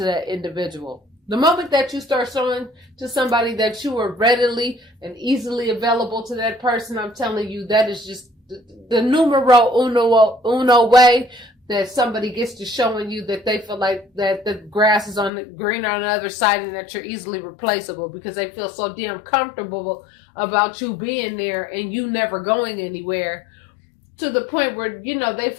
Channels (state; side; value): drops out; right; at 15.3 s